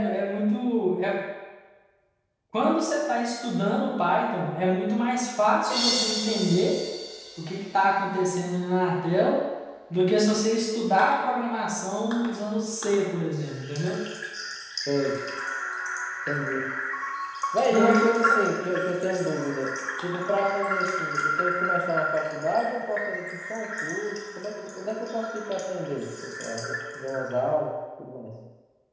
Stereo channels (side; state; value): both; identical; correlation 1.00